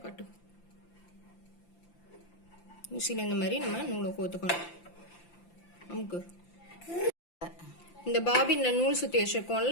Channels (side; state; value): right; late; 5.8 ms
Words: காட்டு. ஊசியில் இந்த மாதிரி நம்ம நூலை கோத்துக்கணும். நமக்கு இந்த பாபின்ல நூல் சுத்தி